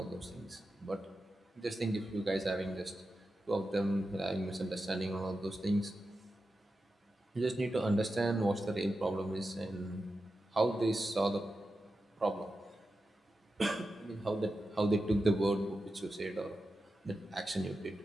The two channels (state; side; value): normal; both; correlation 0.91